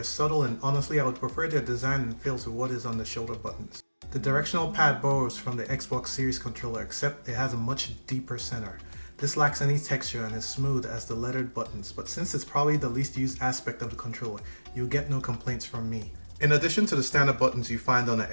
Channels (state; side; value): inverted; both; correlation -1.00